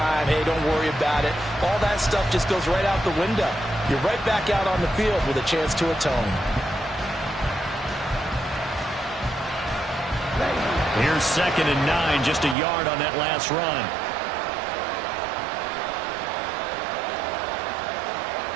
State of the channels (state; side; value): drops out; left; at 12.6 s